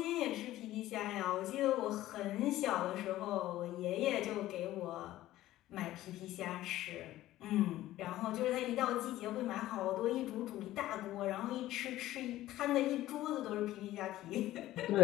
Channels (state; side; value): quieter; right; 15.0 dB